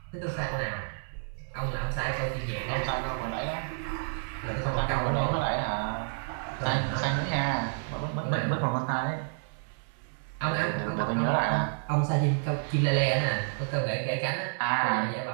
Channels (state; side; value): silent; left; 58 dB below the other